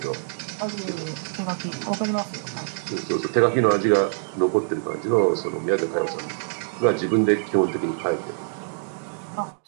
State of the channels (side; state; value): left; silent; digital silence